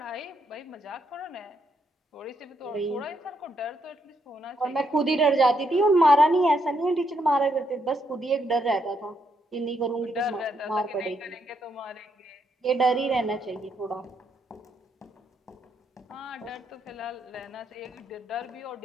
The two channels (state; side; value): normal; both; correlation 0.77